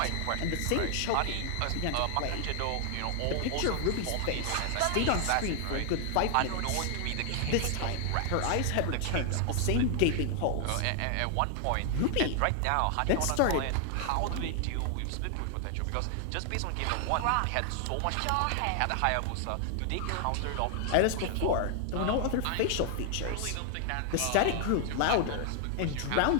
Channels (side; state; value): both; different; correlation 0.00